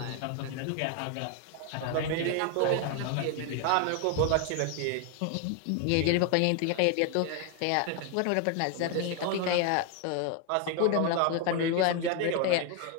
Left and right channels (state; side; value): different; both; correlation 0.01